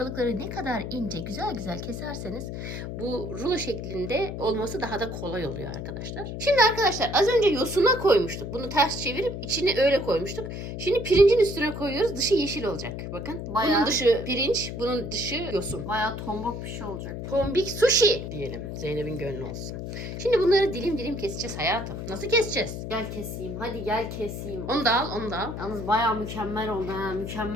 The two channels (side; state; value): left; noise; hum, 6 dB below the sound